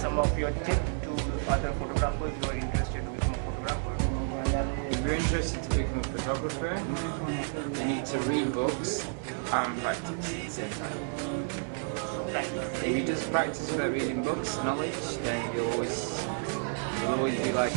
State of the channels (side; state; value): left; silent; 57 dB below the other